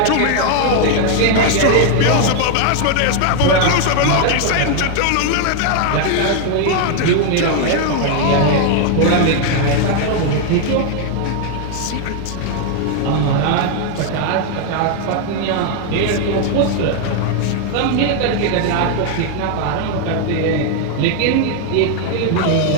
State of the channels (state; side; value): different; both; correlation 0.00